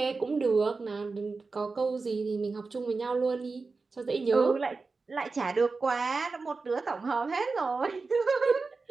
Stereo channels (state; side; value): quieter; left; 4.1 dB